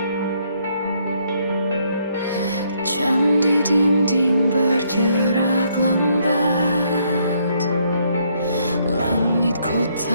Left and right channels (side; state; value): both; inverted; correlation -0.71